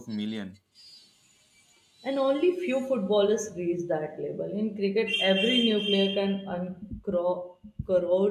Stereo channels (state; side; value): identical; both; correlation 1.00